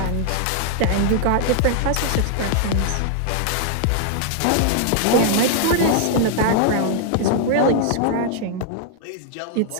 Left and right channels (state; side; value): different; both; correlation 0.00